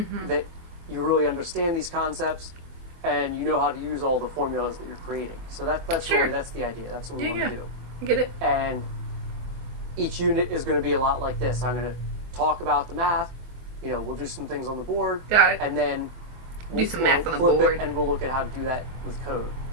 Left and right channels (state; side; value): late; left; 24 ms